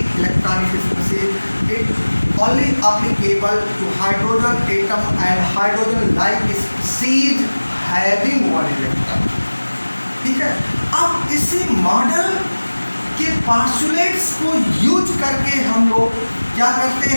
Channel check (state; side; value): inverted; both; correlation -1.00